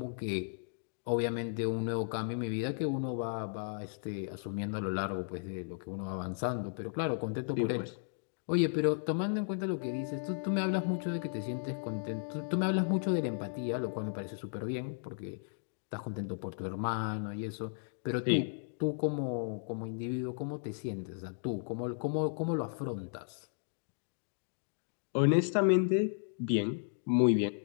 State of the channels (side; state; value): right; silent; digital silence